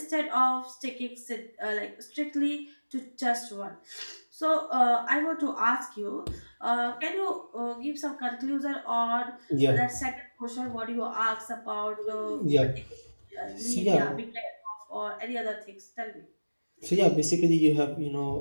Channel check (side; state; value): both; inverted; correlation -1.00